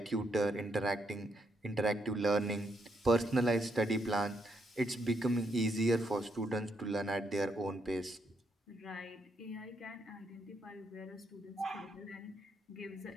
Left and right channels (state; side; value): normal; both; correlation 0.77